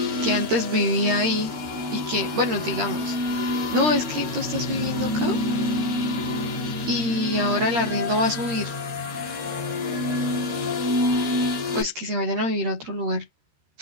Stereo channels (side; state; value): left; late; 13 ms